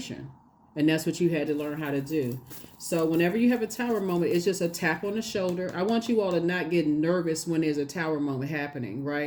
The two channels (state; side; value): identical; both; correlation 1.00